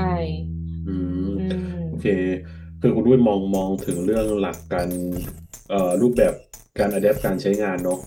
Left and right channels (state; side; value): identical; both; correlation 1.00